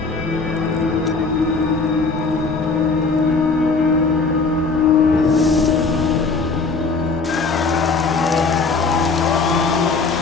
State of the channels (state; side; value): quieter; right; 4.2 dB